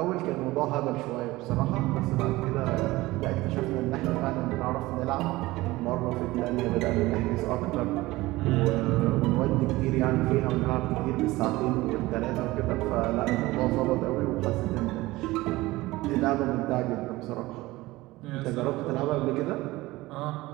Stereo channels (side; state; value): left; quieter; 19.3 dB